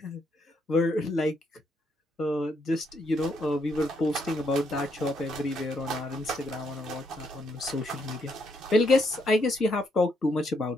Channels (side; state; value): both; normal; correlation 0.75